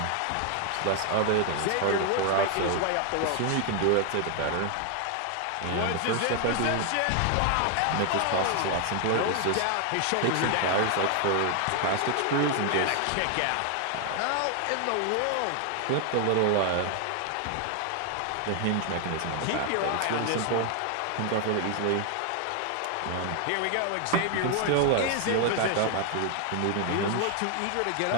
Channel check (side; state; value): both; different; correlation 0.00